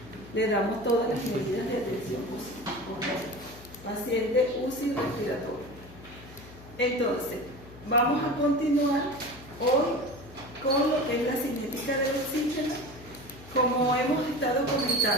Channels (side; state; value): left; noise; hum, 19 dB below the sound